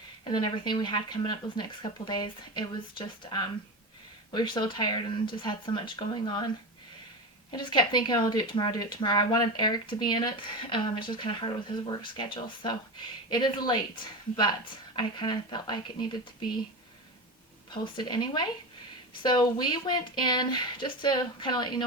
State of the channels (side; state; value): both; normal; correlation 0.22